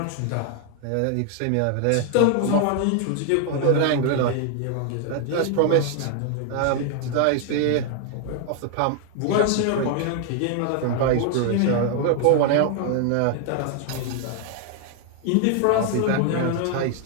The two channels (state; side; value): different; both; correlation 0.00